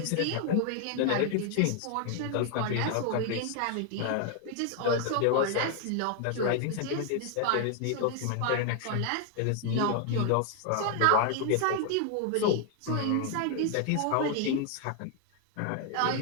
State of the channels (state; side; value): different; both; correlation 0.00